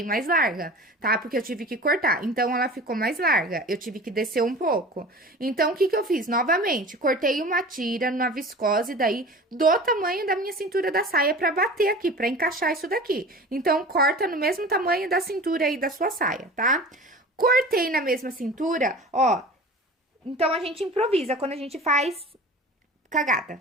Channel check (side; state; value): both; normal; correlation 0.38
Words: mais larga, tá? Porque eu tive que cortar. Então, ela ficou mais larga. Eu tive que descer um pouco. Então, o que que eu fiz? Novamente, cortei uma tira na viscose daí do tamanho da minha cintura da saia pra bater aqui, pra encaixar isso daqui. Então, corta no mesmo tamanho da cintura aí da sua saia, tá? Cortei na mesma cintura, ó. Então, a gente improvisa quando a gente faz cagada,